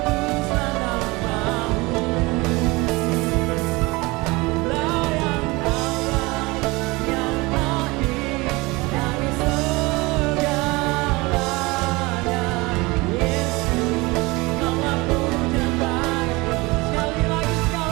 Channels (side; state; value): left; quieter; 23.5 dB